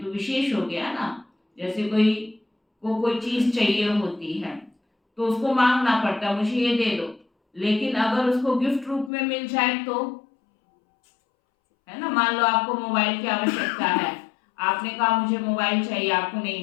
तो विशेष हो गया ना। जैसे कोई चीज चाहिए होती है तो उसको मांगना पड़ता, मुझे ये दे दो, लेकिन अगर उसको गिफ्ट रूप में मिल जाए तो, है ना, मान लो आपको मोबाइल की आवश्यकता है, आपने कहा मुझे मोबाइल चाहिए, आपको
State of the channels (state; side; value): drops out; right; at 9.1 s